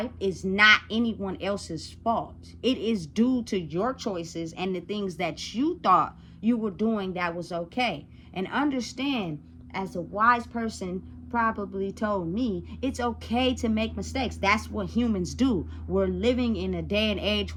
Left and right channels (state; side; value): identical; both; correlation 1.00